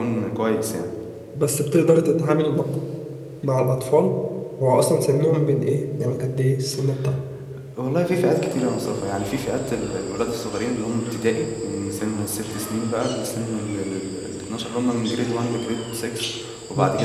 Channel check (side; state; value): both; identical; correlation 1.00